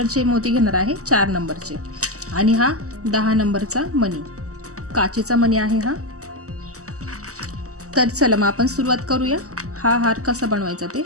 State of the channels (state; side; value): late; left; 0.66 ms